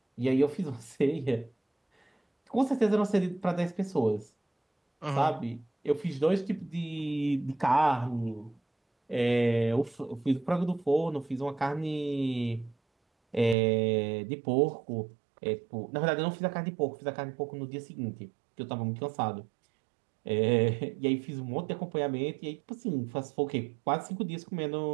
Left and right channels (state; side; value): drops out; left; at 13.6 s